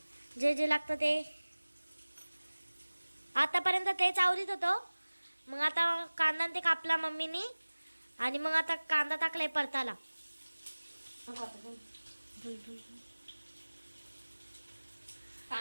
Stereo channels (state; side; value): inverted; both; correlation -1.00